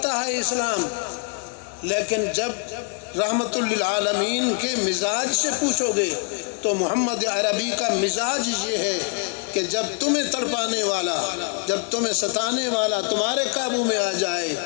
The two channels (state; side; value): quieter; right; 36.7 dB